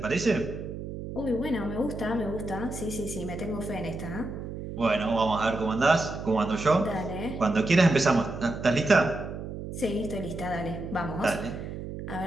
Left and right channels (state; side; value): noise; right; hum, 8 dB below the sound